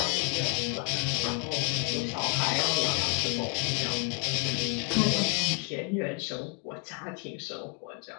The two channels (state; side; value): quieter; right; 36.6 dB